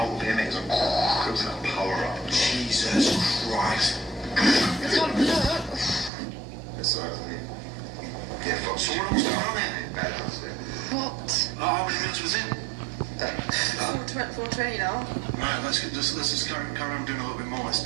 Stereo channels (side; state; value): left; drops out; at 6.1 s